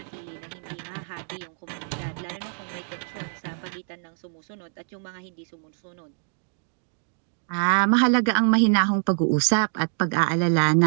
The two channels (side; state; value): left; silent; 61 dB below the other